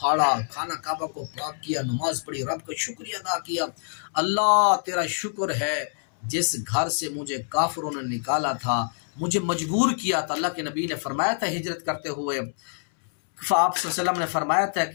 خانہ کعبہ کو پاک کیا، نماز پڑھی، رب کا شکریہ ادا کیا، اللہ تیرا شکر ہے جس گھر سے مجھے کافروں نے نکالا تھا، مجھے مجبور کیا تھا۔ اللہ کے نبی نے فرمایا تھا ہجرت کرتے ہوئے، آپ صلی اللہ علیہ وسلم نے فرمایا تھا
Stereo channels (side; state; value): right; silent; 61 dB below the other